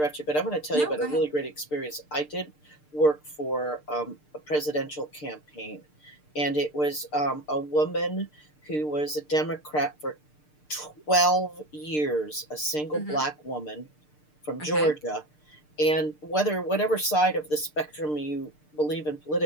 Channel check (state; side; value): late; right; 6.7 ms